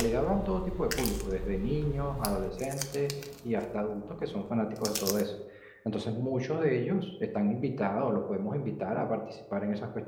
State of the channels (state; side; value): identical; both; correlation 1.00